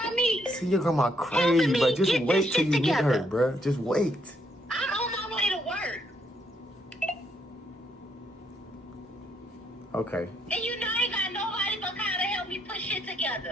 me. See your grandma crazy, but just wait till you meet her, bruh. Just wait. I'm on my way to work. Okay. And you know I ain't got nobody but Kyle to help me put shit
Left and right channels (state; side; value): normal; both; correlation 0.73